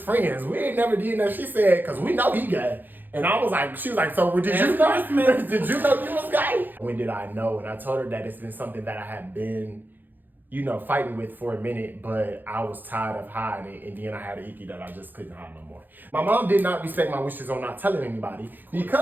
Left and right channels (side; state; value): left; late; 0.088 ms